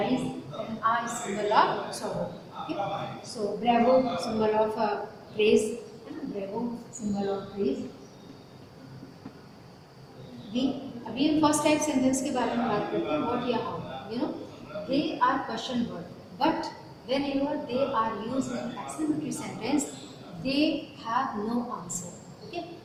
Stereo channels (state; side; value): identical; both; correlation 1.00